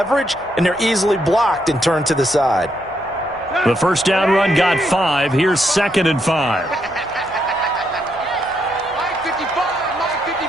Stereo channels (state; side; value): noise; left; hum, 25 dB below the sound